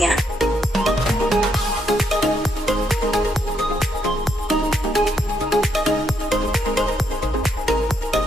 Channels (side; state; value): both; normal; correlation 0.76